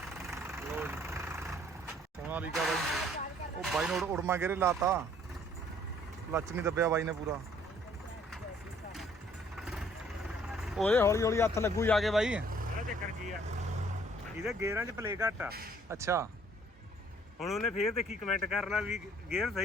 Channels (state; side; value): normal; both; correlation 0.60